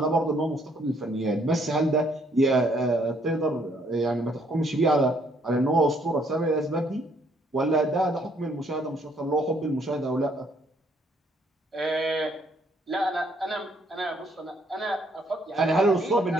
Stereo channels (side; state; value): both; normal; correlation 0.67